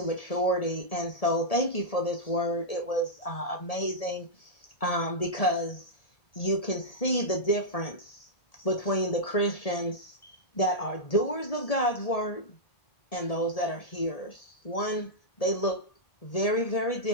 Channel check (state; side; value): late; right; 1.7 ms